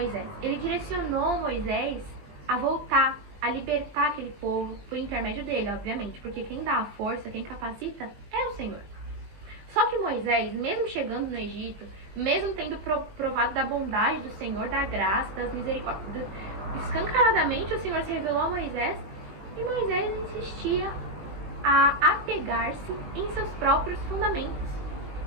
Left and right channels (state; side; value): late; left; 20 ms